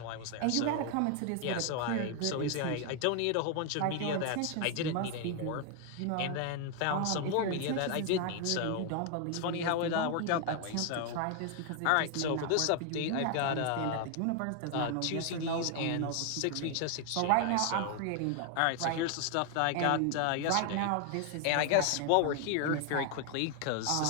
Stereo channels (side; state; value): both; different; correlation 0.00